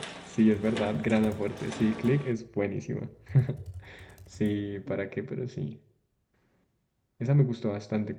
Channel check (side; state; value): both; identical; correlation 1.00